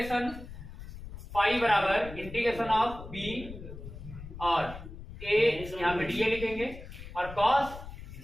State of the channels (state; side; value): noise; left; rumble, 12 dB below the sound